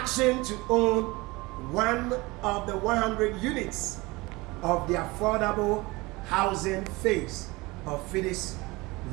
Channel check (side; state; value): left; quieter; 22.9 dB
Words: to own one of the 100 units of the affordable housing phase of Fides